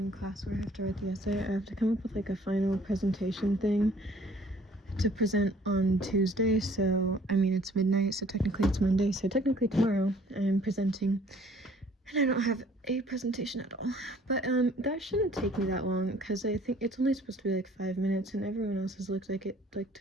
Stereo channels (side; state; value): both; normal; correlation 0.56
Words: class where I have to write the essay, I have to come up with like a final presentation thing to present on Tuesday. So I mean, it's midnight, so technically it's Monday, so technically tomorrow I am presenting, and I don't have a presentation at all. But that shouldn't take me that long, because I think it's only supposed to be like 5 minutes, and everyone else's looks like it like